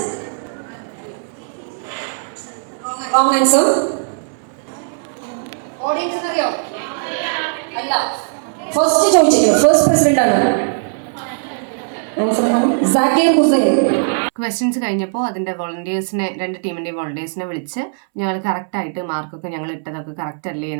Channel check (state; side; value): silent; left; 67 dB below the other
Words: Wrong answer. ഓഡിയൻസിന് അറിയോ? അല്ല. ഫസ്റ്റ് ചോദിച്ചില്ലേ, first president ആണ്. സാക്കിർ ഹുസൈൻ. ക്വസ്റ്റ്യൻസ് കഴിഞ്ഞപ്പോൾ അതിൻ്റെ വോളണ്ടിയേഴ്സിനെ 2 ടീമിൻ്റെയും വോളണ്ടിയേഴ്സിനെ വിളിച്ച് ഞങ്ങൾ കറക്റ്റായിട്ട് മാർക്കൊക്കെ ഞങ്ങൾ ഇട്ടതൊക്കെ കറക്റ്റ് അല്ലേ